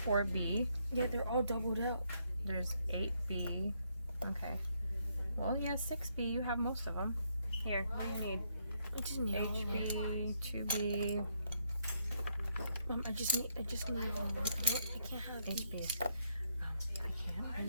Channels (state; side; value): inverted; both; correlation -0.74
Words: Yeah, they're all doubled out. There's 8B. Okay. Well, yeah, 6B. You have most of them. Here, what do you need? I just need HB, 2B. I just need I can't have HB. I